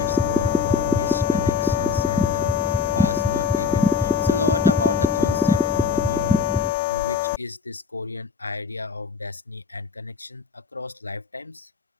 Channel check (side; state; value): right; quieter; 5.3 dB